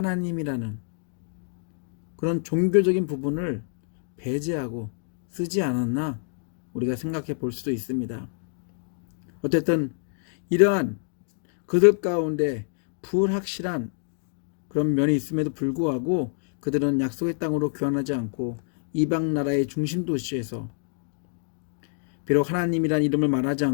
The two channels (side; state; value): right; silent; 60 dB below the other